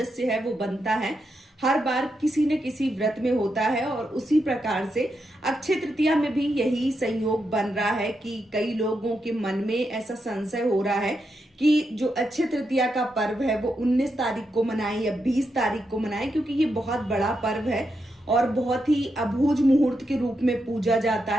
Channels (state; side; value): normal; both; correlation 0.84